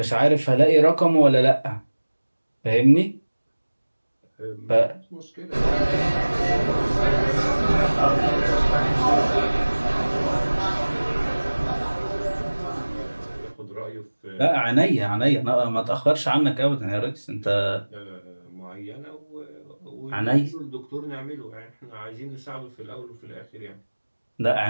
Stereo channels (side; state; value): both; inverted; correlation -1.00